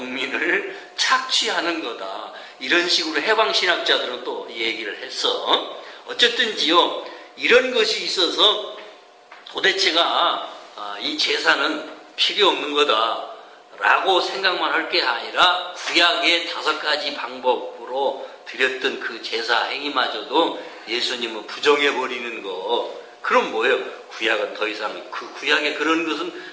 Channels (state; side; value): identical; both; correlation 1.00